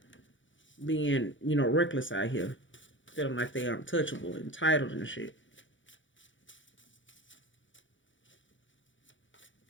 being, you know, reckless out here, feeling like they are untouchable, entitled and shit.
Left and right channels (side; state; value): right; late; 0.56 ms